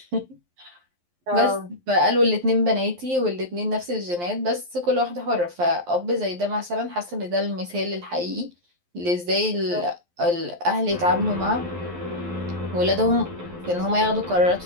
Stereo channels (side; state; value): left; late; 11 ms